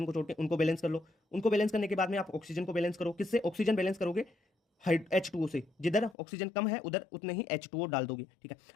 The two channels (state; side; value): drops out; right; at 6.2 s